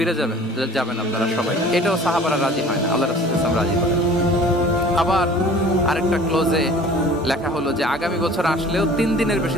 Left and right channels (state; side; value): normal; both; correlation 0.47